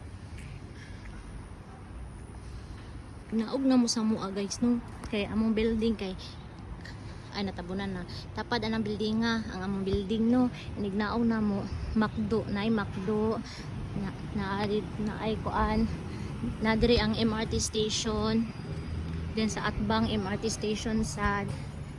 Naog na mo sa mua guys no. Kay among building kay ay natabunan na tapad anang building nga ang among building no inignaong na mo McDo na ay kuan na diri ang MRT station then sa Atbang MRT station sad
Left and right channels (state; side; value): identical; both; correlation 1.00